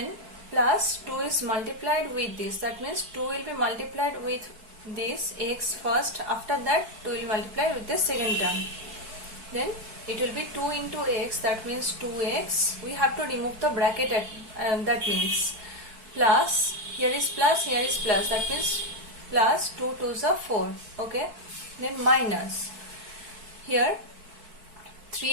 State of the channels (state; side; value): late; left; 4.6 ms